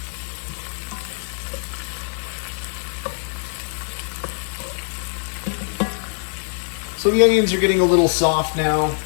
So the onions are getting a little soft now.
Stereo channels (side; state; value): right; silent; digital silence